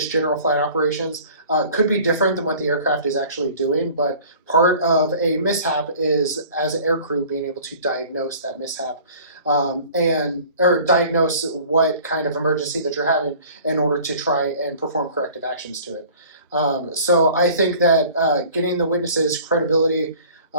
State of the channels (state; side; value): inverted; both; correlation -0.47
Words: general flight operations, could be different than what the aircraft is actually doing. But part of a mishap is, as an aircrew, being able to diagnose that mishap or diagnose what kind of emergency that you're having in order to try and perform corrective actions to it. So I think that getting the witnesses' credibility